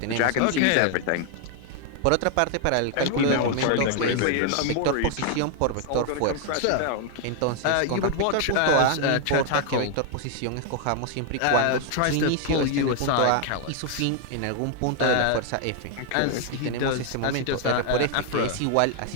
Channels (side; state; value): both; different; correlation 0.00